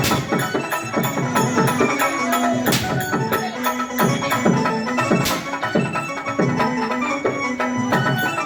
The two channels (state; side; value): identical; both; correlation 1.00